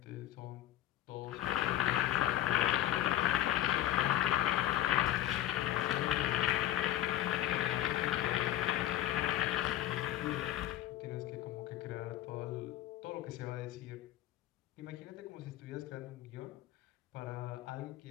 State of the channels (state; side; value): quieter; right; 13.0 dB